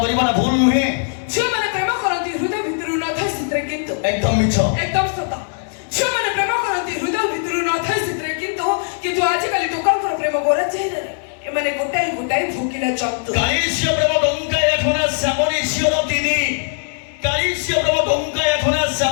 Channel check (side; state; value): right; silent; digital silence